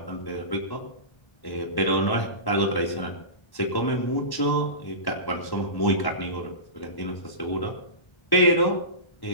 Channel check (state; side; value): late; right; 1.1 ms